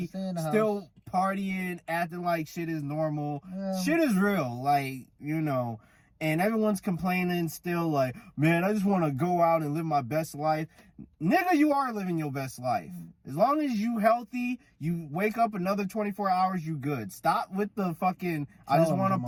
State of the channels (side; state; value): both; identical; correlation 1.00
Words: still partying, acting like shit is normal. Yeah. Shit is real. Like, and everyone's complaining still like, man, I just want to go out and live my best life. Nigga, you are living your best life. As long as you healthy, you wake up another 24 hours, you good. Stop with the fucking, I just want to